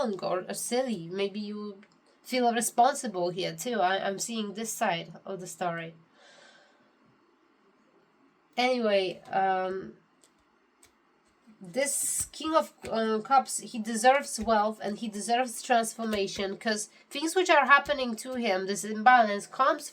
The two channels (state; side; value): identical; both; correlation 1.00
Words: or silly. Maybe you feel responsible here too. I'm seeing this side of the story. Anyway, this King of Cups, he deserves wealth and he deserves transformation, because things which are happening to him, this imbalance, comes